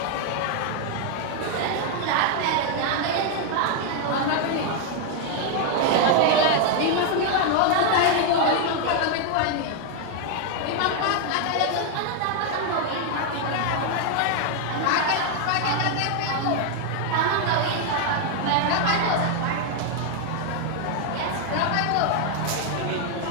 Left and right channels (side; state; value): both; different; correlation 0.00